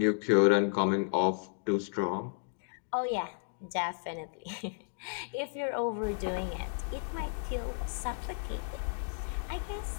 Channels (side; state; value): right; silent; digital silence